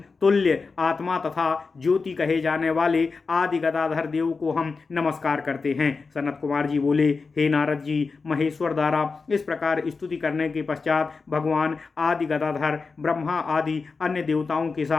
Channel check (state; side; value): quieter; right; 4.5 dB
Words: तुल्य आत्मा तथा ज्योति कहे जाने वाले आदि गदाधर देव को हम नमस्कार करते हैं। सनत कुमार जी बोले, हे नारद जी, महेश्वर द्वारा इस प्रकार स्तुति करने के पश्चात भगवान आदि गदाधर ब्रह्मा आदि अन्य देवताओं के